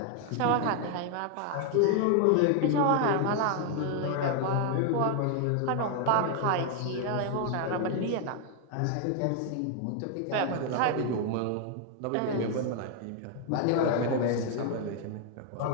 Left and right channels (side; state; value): both; different; correlation 0.00